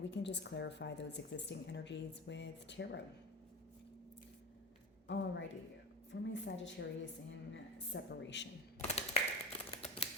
we can just clarify those existing energies with tarot. Alrighty, for my Sagittarius in separation.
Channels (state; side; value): normal; both; correlation 0.24